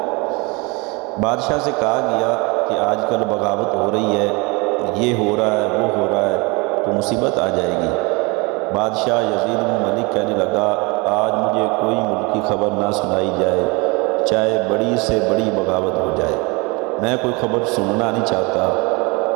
بادشاہ سے کہا گیا کہ آج کل بغاوت ہو رہی ہے، یہ ہو رہا ہے، وہ ہو رہا ہے، تو مصیبت آ جائے گی۔ بادشاہ یزید بن ملک کہنے لگا، آج مجھے کوئی ملکی خبر نہ سنائی جائے، چاہے بڑی سے بڑی بغاوت ہو جائے، میں کوئی خبر سننا نہیں چاہتا۔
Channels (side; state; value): left; quieter; 27.6 dB